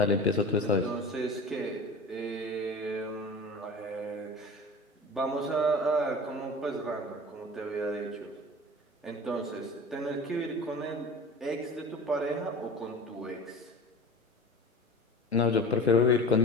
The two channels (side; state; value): both; normal; correlation 0.36